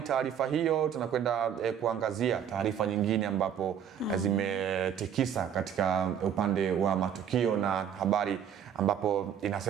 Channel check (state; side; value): quieter; left; 8.7 dB